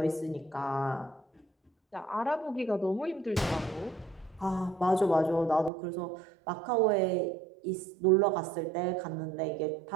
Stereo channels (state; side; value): drops out; left; at 5.7 s